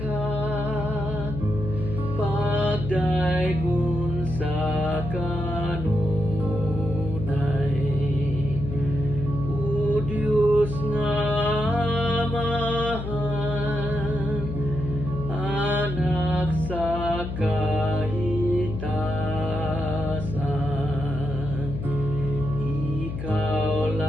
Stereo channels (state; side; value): noise; left; hum, 6 dB below the sound